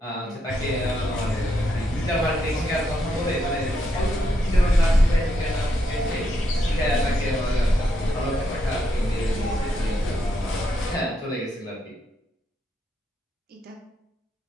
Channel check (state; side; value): normal; both; correlation 0.79